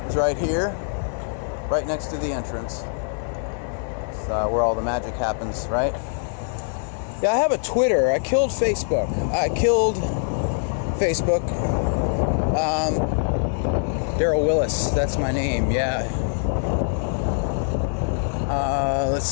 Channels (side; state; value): right; silent; 63 dB below the other